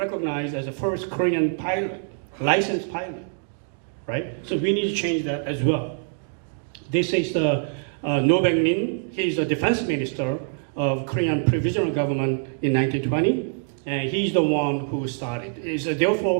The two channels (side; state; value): left; silent; 62 dB below the other